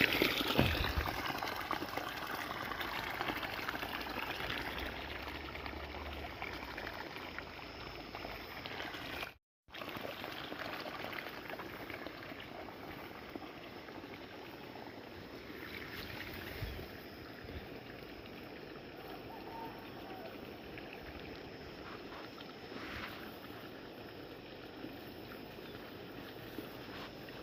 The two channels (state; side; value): identical; both; correlation 1.00